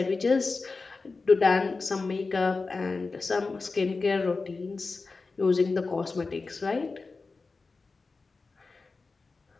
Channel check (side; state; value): right; quieter; 4.0 dB